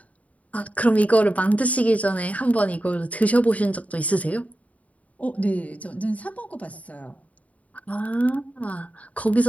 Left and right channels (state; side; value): late; right; 0.069 ms